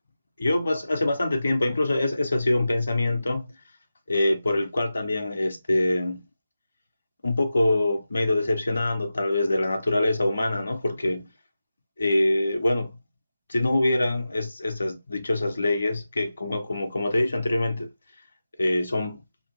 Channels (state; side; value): inverted; both; correlation -0.93